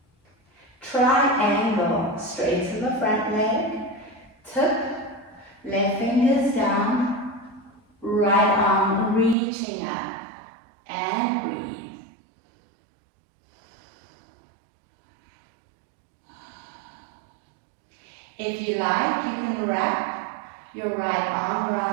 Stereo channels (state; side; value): drops out; left; at 9.3 s